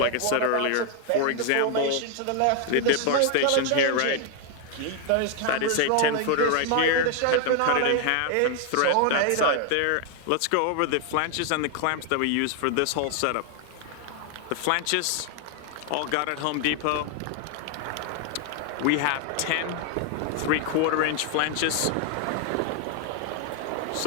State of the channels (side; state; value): both; different; correlation 0.00